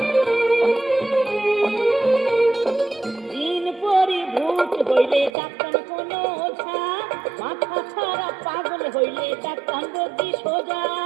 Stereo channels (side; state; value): left; drops out; at 5.3 s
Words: দিন পরি ভূত হইলে ডাক্তার কোন ওঝা, মাথা খারাপ পাগল হইলে ডাক্তার রোগী সোজা।